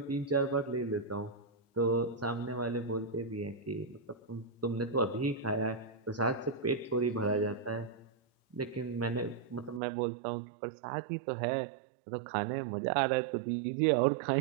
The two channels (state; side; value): drops out; left; at 9.8 s